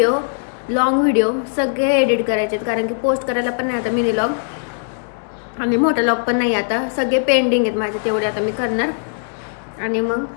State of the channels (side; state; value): right; silent; digital silence